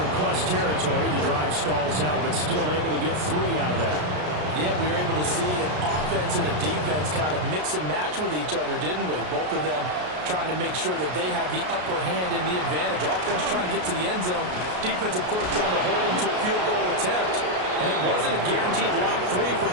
plus territory. The drive stalls out, but still able to get 3 out of that. Yeah, we were able to see an offense and a defense kind of mix and match with each other, didn't we? Both of them trying to make sure that they have the upper hand and the advantage. Offense trying to get to the end zone. Defense, of course, trying to hold them to a field goal attempt. And it wasn't a guaranteed lock 3 from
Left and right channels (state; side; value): late; left; 33 ms